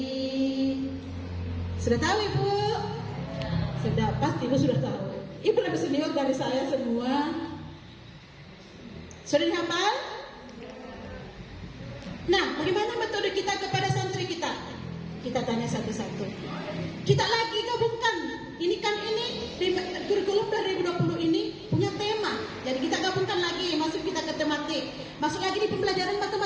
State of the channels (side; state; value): both; identical; correlation 1.00